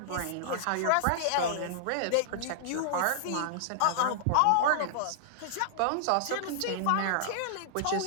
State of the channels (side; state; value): both; different; correlation -0.01